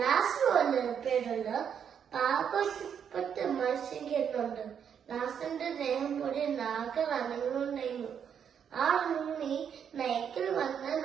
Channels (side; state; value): left; quieter; 7.9 dB